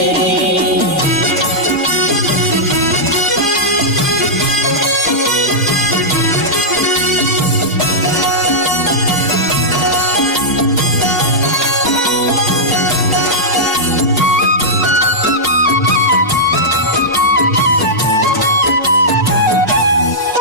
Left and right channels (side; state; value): both; normal; correlation -0.10